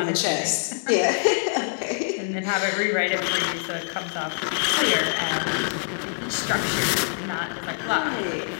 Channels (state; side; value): silent; right; digital silence